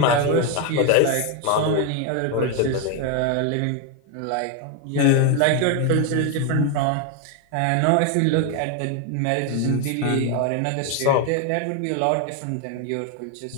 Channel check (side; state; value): both; different; correlation 0.01